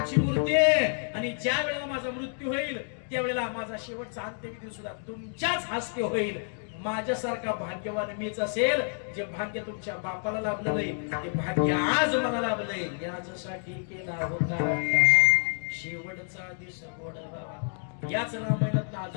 मूर्ती आहे. आणि ज्या वेळेला माझा मृत्यू होईल त्यावेळेला माझा शेवटचा अंत्यविधी सुद्धा तुमच्याच हस्ते होईल. माझ्यासारखा भाग्यवान मीच असेल. जे भाग्य तुमच्या बापाला लाभलं नाही ते भाग्य आज मला लाभलंय. यासाठी केला होता शेवटचा दिवस गोडा. याच रामायणात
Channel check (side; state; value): right; silent; 59 dB below the other